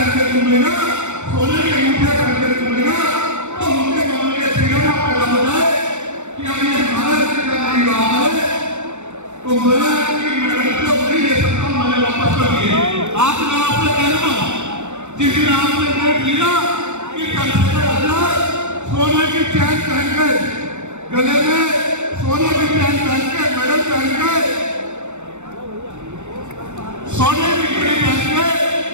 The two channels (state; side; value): late; left; 0.83 ms